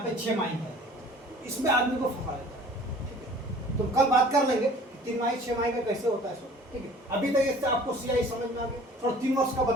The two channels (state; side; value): normal; both; correlation 0.49